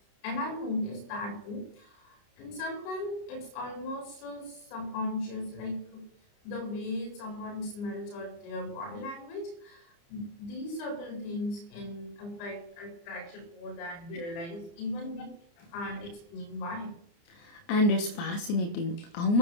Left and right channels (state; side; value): late; right; 29 ms